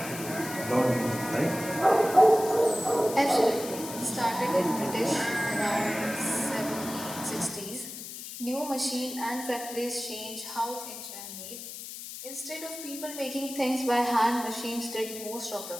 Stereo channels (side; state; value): left; noise; hiss, 10 dB below the sound